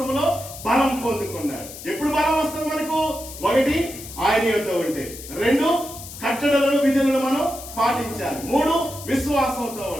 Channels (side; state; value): left; noise; hiss, 13 dB below the sound